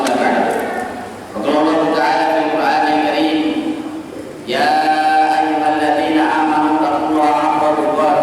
ba'dahu. Qala Allah ta'ala fil Qur'anil Karim, ya ayyuhalladzina amanu taqullaha haqqa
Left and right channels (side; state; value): both; identical; correlation 1.00